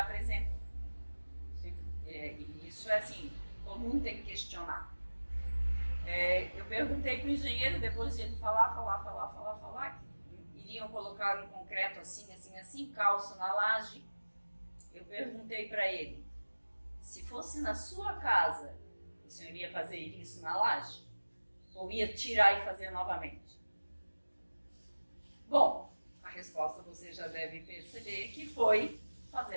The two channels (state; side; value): inverted; both; correlation -1.00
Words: E isso é assim, todo mundo tem que questionar. Eu perguntei para o engenheiro, depois de ele falar, que iriam colocar um concreto assim, calço na laje. Eu perguntei para ele, se fosse na sua casa, o senhor ia fazer isso na laje? Ou ia tirar e fazer novamente? Bom, a resposta você já deve perceber que foi